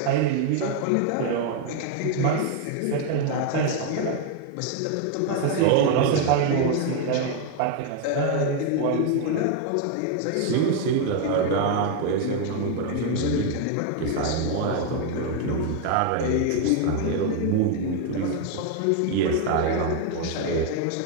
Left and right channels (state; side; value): different; both; correlation 0.01